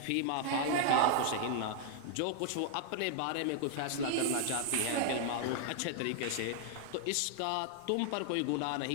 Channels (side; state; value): both; different; correlation -0.01